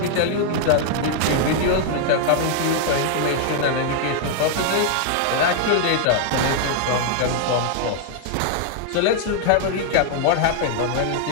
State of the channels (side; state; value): both; different; correlation 0.00